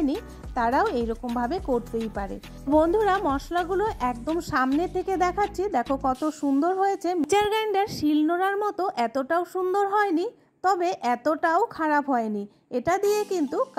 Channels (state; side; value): identical; both; correlation 1.00